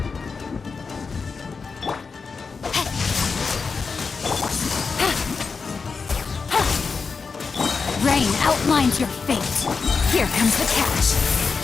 Rain outlines your fate. Here comes the catch.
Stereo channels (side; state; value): right; quieter; 5.0 dB